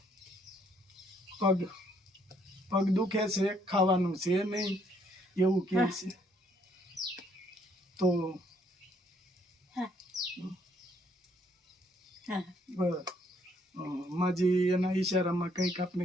પગ દુખે છે, ખાવાનું છે નહીં એવું કહે છે. તો માજી એના ઈશારામાં કંઈક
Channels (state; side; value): normal; both; correlation 0.68